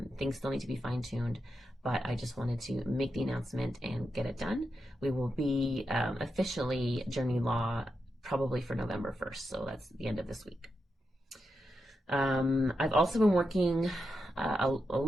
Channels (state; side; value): normal; both; correlation 0.87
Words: Things still need to be fine-tuned, but I just wanted to make the announcement and get it done. We will be officially Journey Law probably for November 1st, so that's the end of this week. I've also been working a